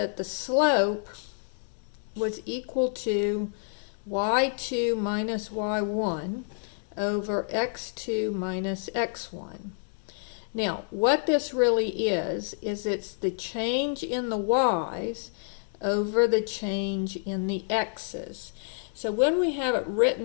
the slope was equal to y2 minus y1 over x2 minus x1. Now, what this really is it's the change in the y's over the change in the x's. So when we have it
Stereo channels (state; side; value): silent; right; 59 dB below the other